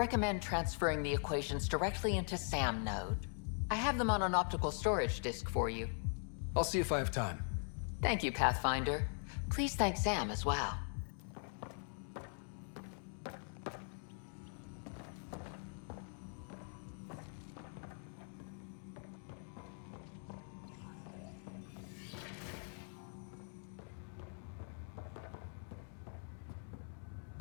transferring the equations directly into SAM node. I have them on an optical storage disk for you. I'll see if I have time. Thank you, Pathfinder. Please thank Sam as well.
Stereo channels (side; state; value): right; silent; 50 dB below the other